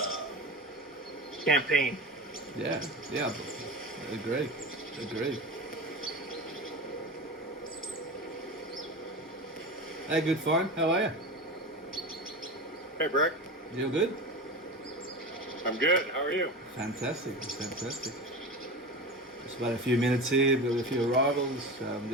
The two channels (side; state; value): both; normal; correlation 0.28